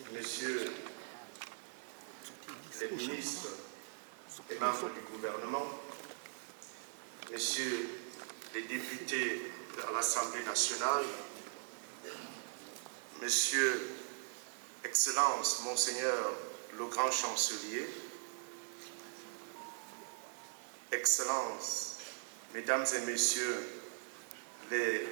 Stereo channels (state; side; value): silent; left; 51 dB below the other